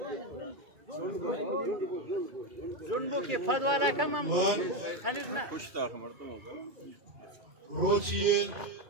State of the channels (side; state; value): left; late; 2.3 ms